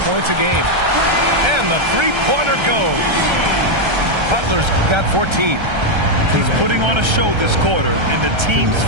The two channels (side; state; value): left; late; 1.3 ms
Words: points a game. And the three-pointer goes. Butler's got 14. He's putting on a show this quarter, and the team's